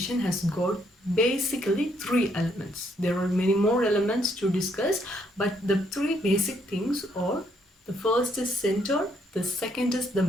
has got basically three elements. There are many more elements to discuss, but the three basic things are: the first is sender, the second is the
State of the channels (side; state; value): both; normal; correlation 0.71